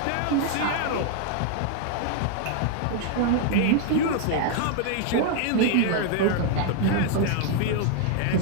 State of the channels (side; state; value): both; different; correlation 0.00